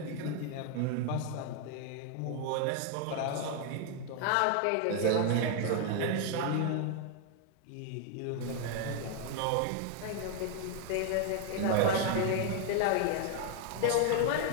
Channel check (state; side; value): different; both; correlation 0.00